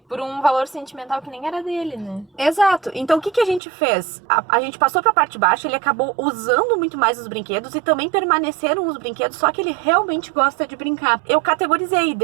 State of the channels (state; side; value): drops out; left; at 3.6 s